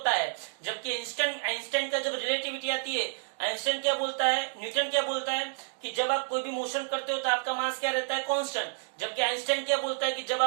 है, जबकि आइंस्टाइन का जब रिलेटिविटी आती है, आइंस्टाइन क्या बोलता है, न्यूटन क्या बोलता है कि जब आप कोई भी मोशन करते हो तो आपका मास क्या रहता है कांस्टेंट, जबकि आइंस्टाइन क्या बोलता है कि जब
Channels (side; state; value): left; silent; digital silence